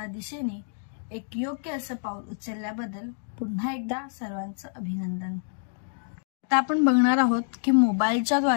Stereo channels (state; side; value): silent; right; digital silence